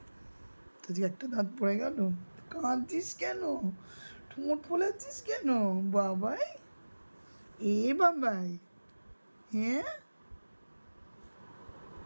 তো যে একটা দাঁত পড়ে গেল, কাঁদছিস কেন, ঠোঁট ফোলাচ্ছিস কেন বাবাই? এ বাবাই, হ্যাঁ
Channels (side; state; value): both; inverted; correlation -1.00